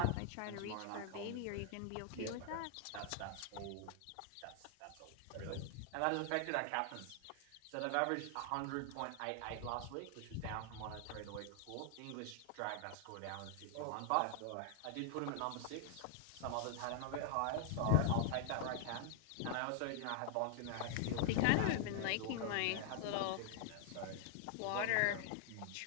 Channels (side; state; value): both; different; correlation 0.00